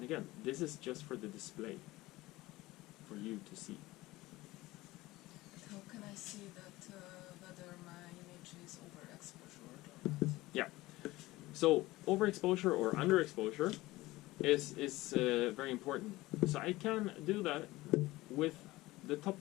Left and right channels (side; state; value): right; quieter; 18.9 dB